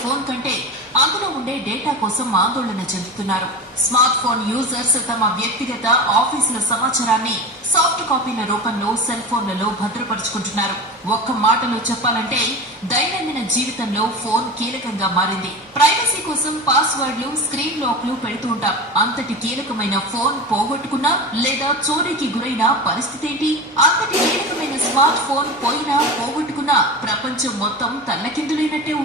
ఫోన్ కంటే అందులో ఉండే డేటా కోసం ఆందోళన చెందుతున్నారు. స్మార్ట్ ఫోన్ యూజర్స్ తమ వ్యక్తిగత ఆఫీసుల సమాచారాన్ని సాఫ్ట్ కాపీల రూపంలో సెల్ ఫోన్లలో భద్రపరుచుకుంటున్నారు. ఒక్క మాటలో చెప్పాలంటే దైనందిన జీవితంలో ఫోన్ కీలకంగా మారింది. ప్రైవసీ కోసం పాస్వర్డ్లు, స్క్రీన్ లాక్లు పెడుతూ ఉంటాం. అంతటి కీలకమైన ఫోన్ పోగొట్టుకున్నా లేదా చోరీకి గురైన పరిస్థితి ఏంటి? అంతటి కీలకమైన స్మార్ట్ ఫోన్ పోయినా పోగొట్టుకున్నా ప్రపంచం మొత్తం తల్లకిందులైనట్టే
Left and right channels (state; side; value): normal; both; correlation 0.27